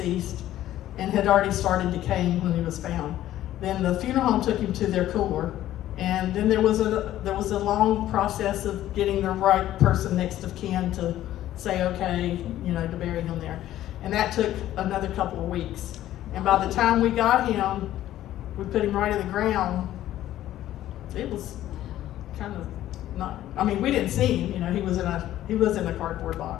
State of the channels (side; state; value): right; quieter; 13.3 dB